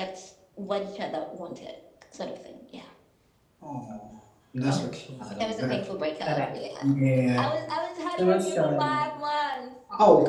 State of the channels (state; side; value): identical; both; correlation 1.00